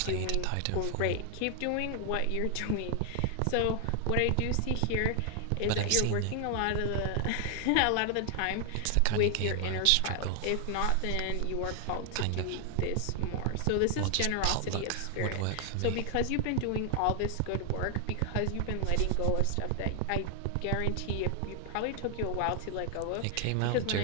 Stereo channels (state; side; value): different; both; correlation 0.00